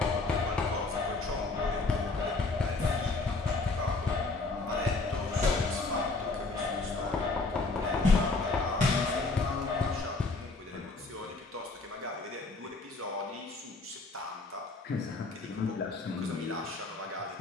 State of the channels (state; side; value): quieter; right; 3.6 dB